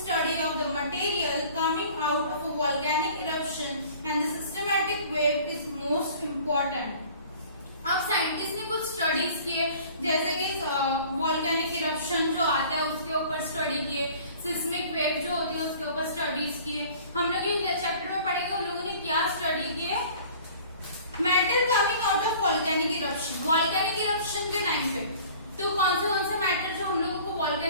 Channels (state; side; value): inverted; both; correlation -0.48